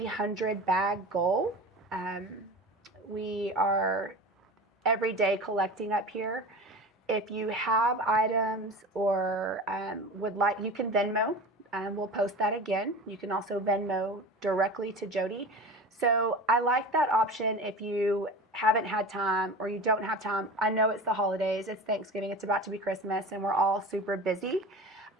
bag goal. We are every day collecting up here. If you have items or would like, you can Venmo. We'll post that again. You can also Venmo directly to Jody. So I like that option if you haven't had time or you don't have time. I know it's the holidays, it's Thanksgiving, it's about to be Christmas, and we're all super busy.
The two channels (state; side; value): normal; both; correlation 0.33